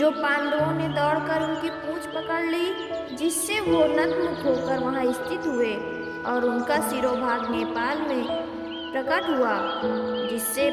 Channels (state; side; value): identical; both; correlation 1.00